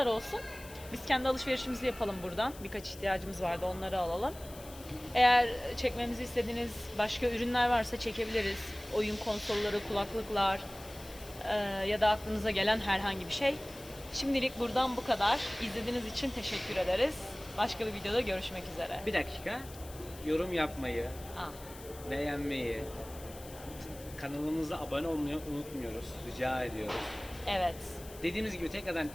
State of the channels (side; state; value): left; noise; hiss, 17 dB below the sound